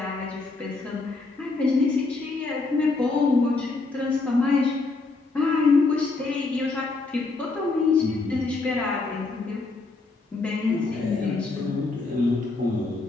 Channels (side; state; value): right; quieter; 3.7 dB